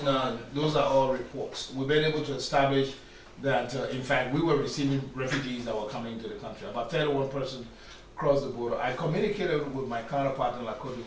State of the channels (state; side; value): identical; both; correlation 1.00